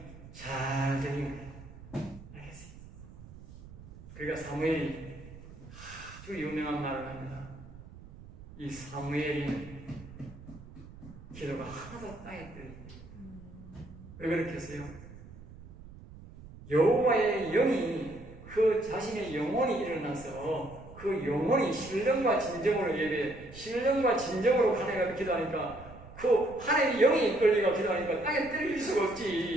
잘 들린 거예요. 알겠어요. 그러니까 사무엘이 아주 유명한 말을 합니다. 이 사무엘이 기도가 하나도 땅에 떨어집니다. 왜 그렇게 했어요? 여호와의 영이 그 자신의 영혼이 일어나서 그 영혼이 신령과 진정으로 예배, 신령과 진정으로 하나님과 기도하니까 그 하나님의 영이 이끌리고 기도하니까 땅에 떨릴 수가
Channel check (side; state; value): right; noise; rumble, 17 dB below the sound